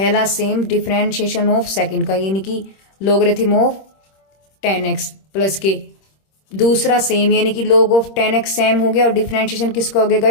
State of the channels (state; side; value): late; right; 26 ms